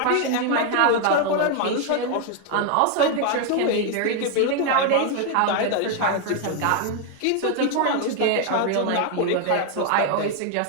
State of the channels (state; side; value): different; both; correlation 0.01